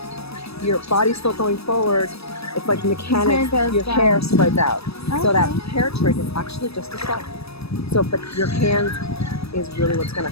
your body's still going forward, it's like mechanics, your hair spreads out. So that hair trick is actually just a stall. So, but your hand is really what's gonna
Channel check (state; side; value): late; right; 0.78 ms